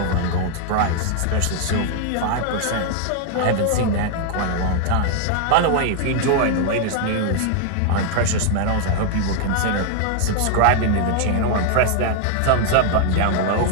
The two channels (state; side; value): different; both; correlation 0.00